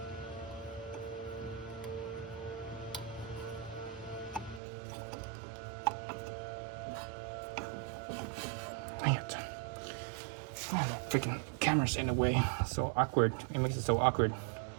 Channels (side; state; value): left; drops out; at 4.6 s